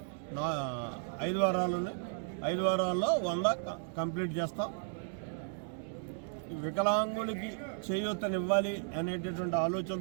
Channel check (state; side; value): silent; left; digital silence